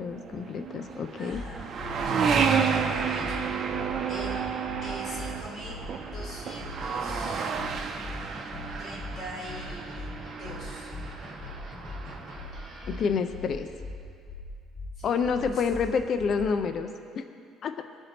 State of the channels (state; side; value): normal; both; correlation 0.61